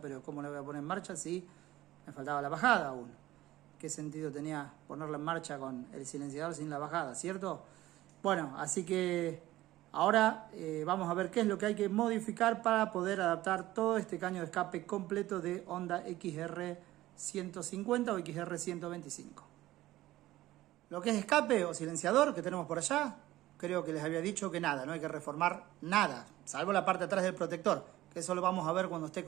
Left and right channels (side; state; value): left; quieter; 16.1 dB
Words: ¿cómo la voy a poner en marcha si me faltaba la bajada aún? ¿Qué sentido tenía ponerla en marcha con el silenciador sin la bajada, cierto? Bueno, así que ahora vamos a ver qué es lo que hay que modificar para poder adaptar todo este caño de escape completo de Honda XR 150 o XR 125. Lo que es escape o silenciador que tenemos por allá, creo que les había dicho que nada, no hay que reformar nada, salvo la parte de atrás del protector, que eso lo vamos a ver cuando esté